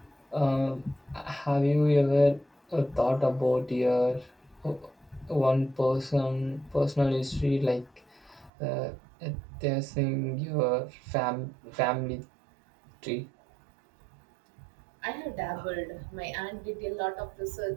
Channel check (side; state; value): left; drops out; at 8.5 s